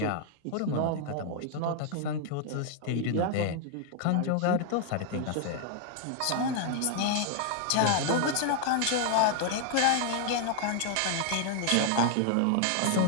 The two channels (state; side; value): different; both; correlation 0.00